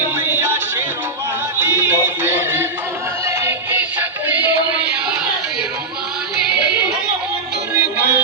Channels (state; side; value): quieter; left; 3.3 dB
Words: मैया शेरों वाली, मेरे भोले की शक्ति मैया शेरों वाली, तुम हो दुर्गा